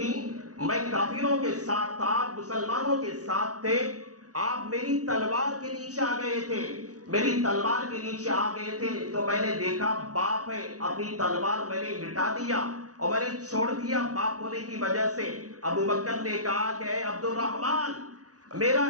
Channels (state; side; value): late; left; 0.67 ms